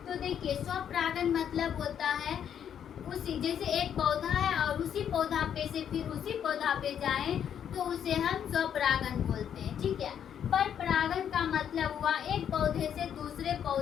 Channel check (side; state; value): right; quieter; 8.9 dB